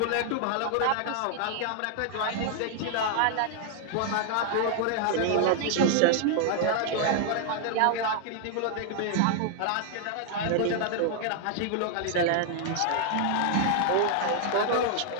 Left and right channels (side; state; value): both; different; correlation 0.00